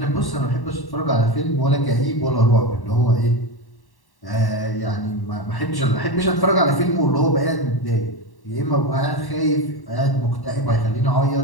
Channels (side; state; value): right; late; 1.1 ms